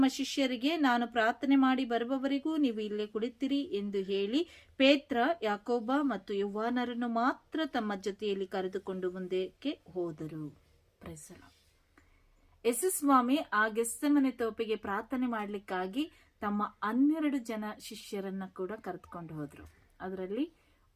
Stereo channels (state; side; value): identical; both; correlation 1.00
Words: ಶಿಷ್ಯರಿಗೆ, ನಾನು ಪ್ರಾರ್ಥನೆ ಮಾಡಿ ಬರುವವರೆಗೂ ನೀವು ಇಲ್ಲೇ ಕುಳಿತಿರಿ ಎಂದು ಹೇಳಿ ಪೇತ್ರ, ಯಾಕೋಬ ಮತ್ತು ಯೋಹಾನರನ್ನು ಮಾತ್ರ ತಮ್ಮ ಜೊತೆಯಲ್ಲಿ ಕರೆದುಕೊಂಡು ಮುಂದಕ್ಕೆ ಹೋದರು. ಯೇಸು ಸ್ವಾಮಿ ಆ ಗೆಸ್ತಮನೆ ತೋಪಿಗೆ ಪ್ರಾರ್ಥನೆ ಮಾಡ್ಲಿಕ್ಕಾಗಿ ತಮ್ಮ 12 ಜನ ಶಿಷ್ಯರನ್ನ ಕೂಡ ಕರೆದುಕೊಂಡು ಹೋದ್ರು. ಅದರಲ್ಲಿ